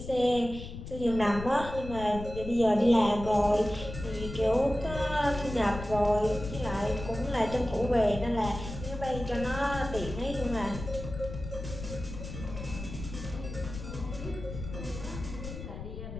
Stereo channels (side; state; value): left; noise; rumble, 9 dB below the sound